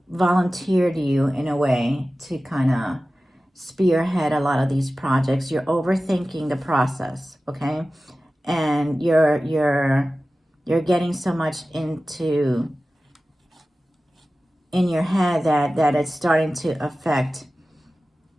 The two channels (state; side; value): normal; both; correlation 0.96